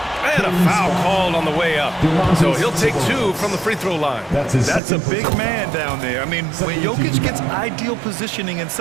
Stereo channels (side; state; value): left; drops out; at 4.8 s